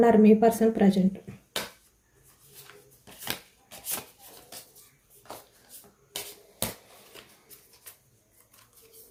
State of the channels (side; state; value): both; identical; correlation 1.00